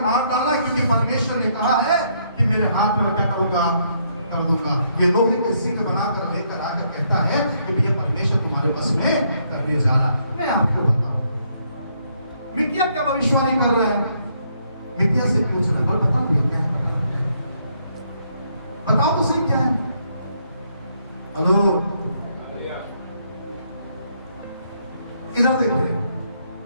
मार डाला, क्योंकि परमेश्वर ने कहा है कि मेरे हाथ में क्या करूंगा, कर दूंगा। ये लोहे के सिंह बनाकर लेकर आकर कहता है कि भैया परमेश्वर तुम्हारे बस में करने जा रहा। मैं आपको बताऊं, मिकिया क्या भविष्यवाणी कर रहा है? मिकिया से पूछना, कल बताओ क्या है, बताओ तो सही क्या है। हेलो, इधर देखिए,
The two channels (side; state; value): both; inverted; correlation -0.72